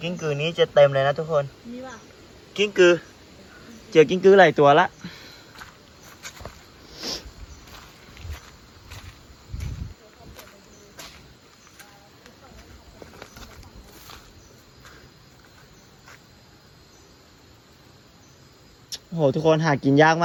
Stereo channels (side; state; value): both; identical; correlation 1.00